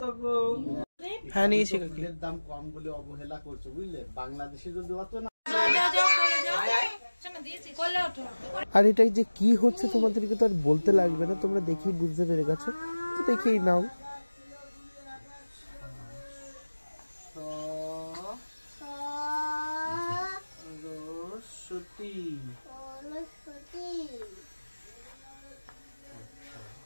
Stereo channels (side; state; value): both; inverted; correlation -1.00